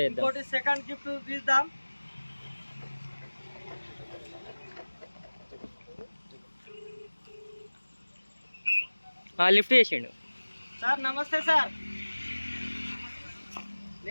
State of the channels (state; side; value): inverted; both; correlation -1.00